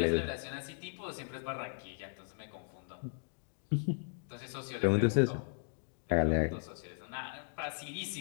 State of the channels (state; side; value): silent; right; digital silence